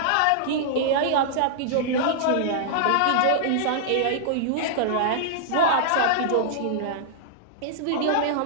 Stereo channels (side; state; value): both; different; correlation -0.01